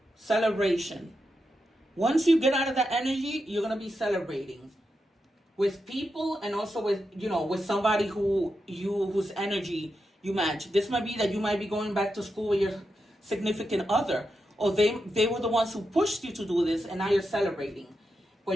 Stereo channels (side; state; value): both; normal; correlation 0.87